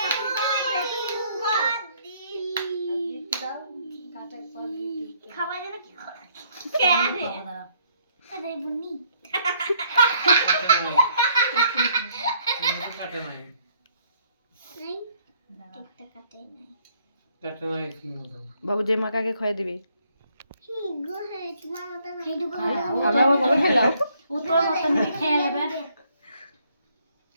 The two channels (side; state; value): both; inverted; correlation -0.67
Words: খাওয়া যেন কি আরে বুনি কাটে নাই নাই একটা কাটে নাই কাটে নাই কি মতো বাবু যে মাকাকে খাইয়ে দিবি কি গো হে তোমার মত খাই দেব আমরা কবে খেলাও ও তোর মতন করে খেয়ে নেবে